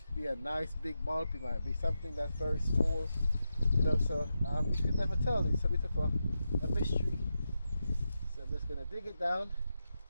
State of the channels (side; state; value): both; inverted; correlation -0.88